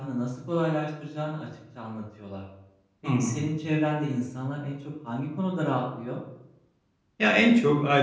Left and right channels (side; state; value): both; identical; correlation 1.00